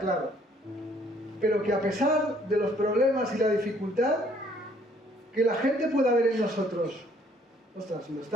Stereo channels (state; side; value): normal; both; correlation 0.62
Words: Pero que a pesar de los problemas y la dificultad, que la gente pueda ver en nosotros, ostras, lo